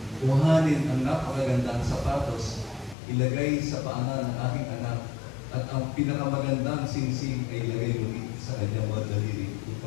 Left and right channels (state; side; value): drops out; right; at 3.0 s